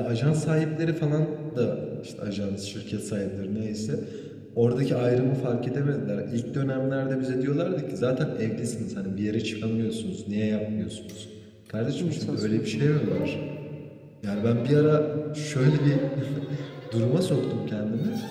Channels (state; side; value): identical; both; correlation 1.00